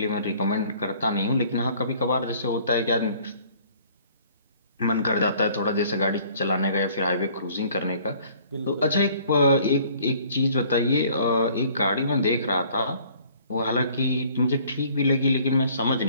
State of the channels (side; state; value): both; inverted; correlation -0.55